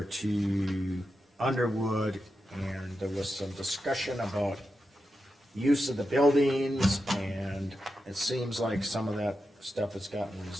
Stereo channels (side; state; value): both; normal; correlation 0.89